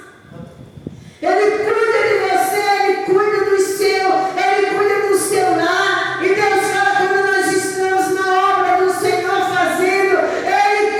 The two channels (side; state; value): both; identical; correlation 1.00